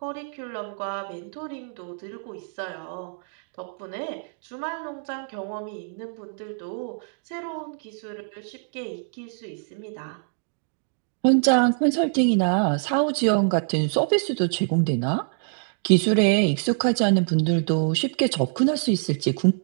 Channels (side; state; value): left; silent; digital silence